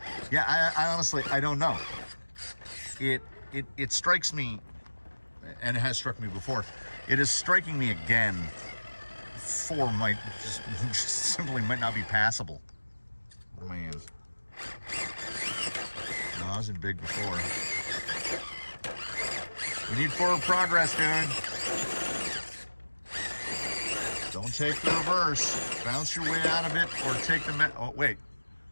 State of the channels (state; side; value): inverted; both; correlation -1.00